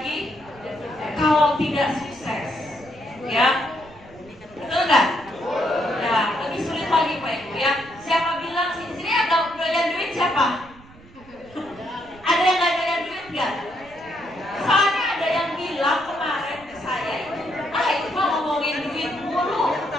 kalau tidak sukses, ya. Betul nggak? Ya, lebih sulit lagi Pak Ibu ya. Siapa bilang sini ada doyan duit siapa? Ada yang nggak doyan duit nggak? Soalnya ada yang bilang kemarin ke saya itu mah ngomongin duit mulu,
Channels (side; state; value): right; noise; rumble, 23 dB below the sound